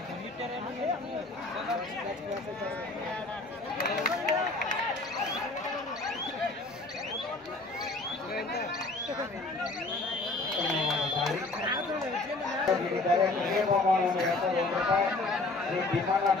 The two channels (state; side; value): quieter; right; 3.1 dB